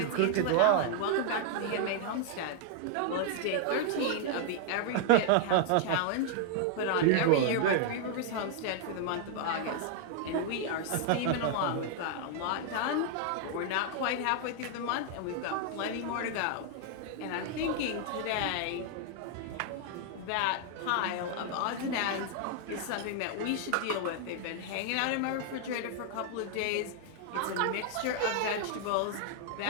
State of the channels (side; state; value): both; different; correlation 0.00